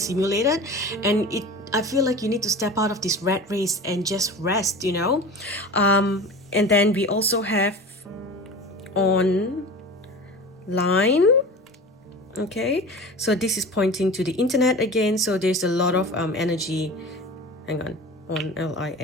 and I feel like you need to step out of this rat race and just rest. And then we also have online. Okay, so this is pointing to the internet again. So there's a lot of energy. Hang on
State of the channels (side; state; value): both; normal; correlation 0.35